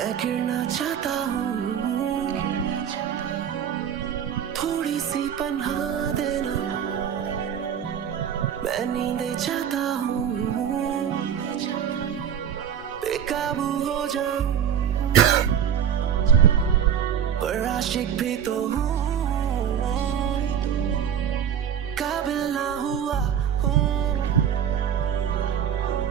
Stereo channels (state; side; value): quieter; left; 8.8 dB